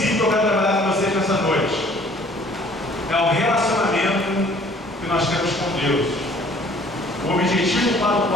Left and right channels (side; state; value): both; normal; correlation 0.55